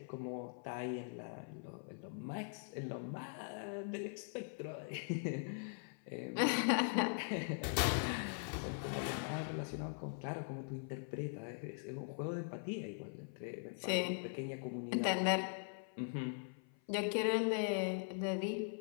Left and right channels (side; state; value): right; silent; 50 dB below the other